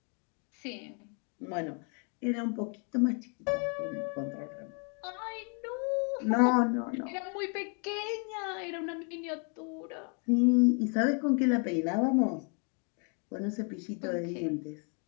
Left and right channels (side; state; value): right; quieter; 38.9 dB